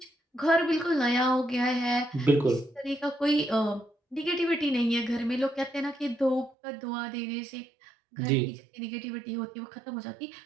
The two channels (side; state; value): left; drops out; at 6.6 s